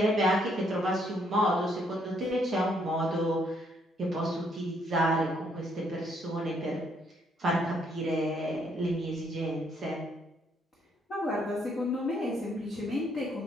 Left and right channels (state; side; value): normal; both; correlation 0.70